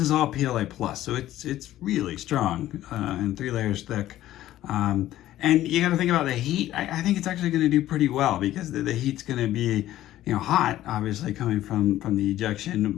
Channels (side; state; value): right; quieter; 13.9 dB